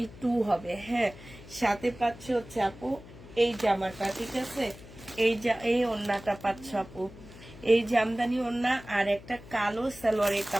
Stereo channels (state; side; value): noise; left; hum, 18 dB below the sound